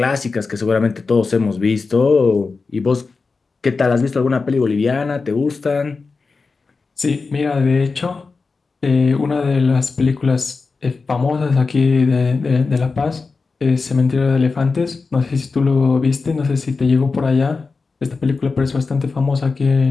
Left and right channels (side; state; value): right; quieter; 4.3 dB